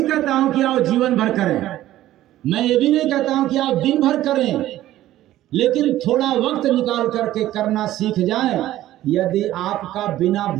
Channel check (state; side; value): quieter; left; 14.2 dB